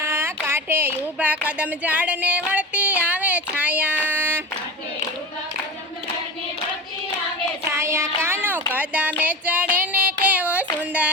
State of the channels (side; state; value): both; normal; correlation 0.29